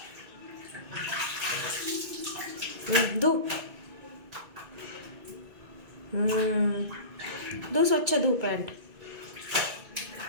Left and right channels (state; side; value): late; left; 2.1 ms